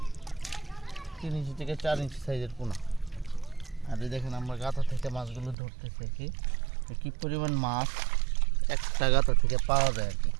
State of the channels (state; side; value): drops out; left; at 5.6 s